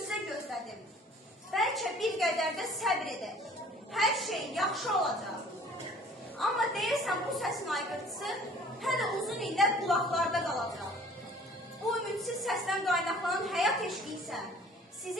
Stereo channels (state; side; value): normal; both; correlation 0.52